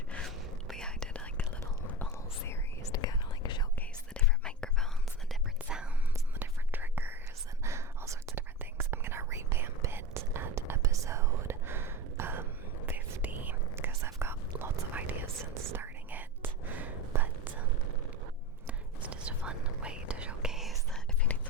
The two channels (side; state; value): both; normal; correlation 0.23